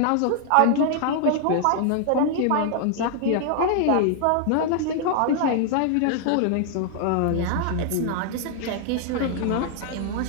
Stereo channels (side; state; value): both; different; correlation 0.00